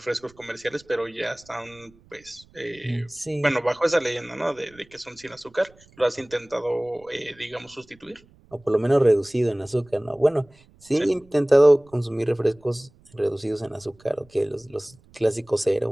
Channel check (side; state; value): right; noise; rumble, 28 dB below the sound